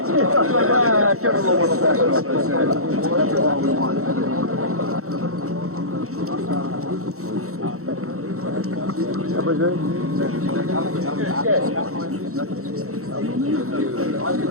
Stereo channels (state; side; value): late; left; 0.64 ms